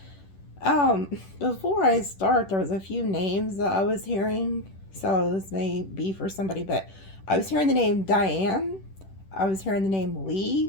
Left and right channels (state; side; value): late; right; 10 ms